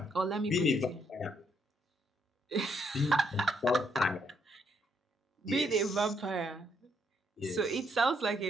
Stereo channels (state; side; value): normal; both; correlation 0.73